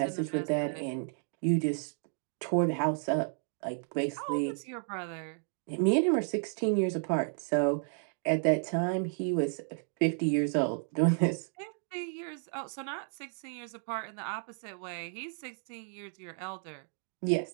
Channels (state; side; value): silent; left; 56 dB below the other